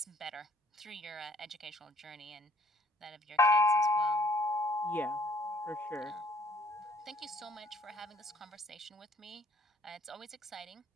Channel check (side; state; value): both; normal; correlation 0.60